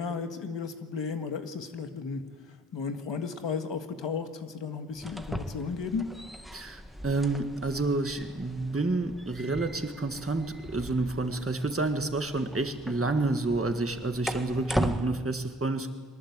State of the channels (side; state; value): both; normal; correlation 0.59